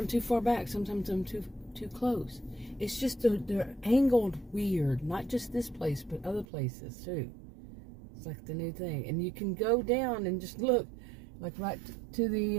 too far back, sometimes I'm too close. It's just they're angled weird, not just this place, but other places too. It's like the new thing. And you can go down and just look, like right to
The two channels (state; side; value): drops out; left; at 6.5 s